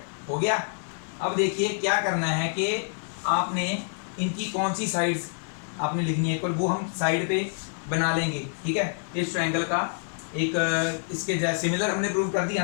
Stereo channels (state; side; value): silent; right; 60 dB below the other